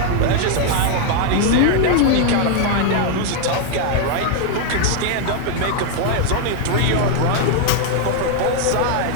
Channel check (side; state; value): both; different; correlation 0.00